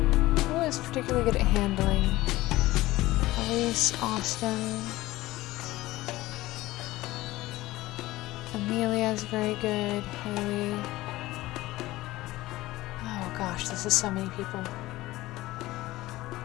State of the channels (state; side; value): quieter; right; 17.9 dB